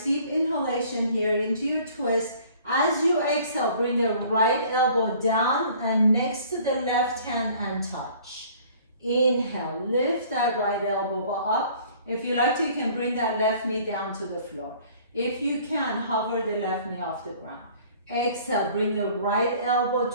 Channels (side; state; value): both; inverted; correlation -0.52